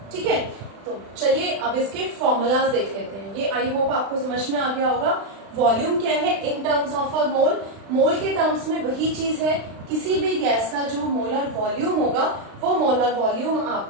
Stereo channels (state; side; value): late; left; 36 ms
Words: ठीक है, तो चलिए अब इसके फॉर्मूलाज देख लेते हैं. ये आई होप आपको समझ में आ गया होगा. वॉल्यूम क्या है इन टर्म्स ऑफ अ मोल, मोल के टर्म्स में वही चीज है, किसी भी गैस का जो मोलर वॉल्यूम होगा वो मोलर वॉल्यूम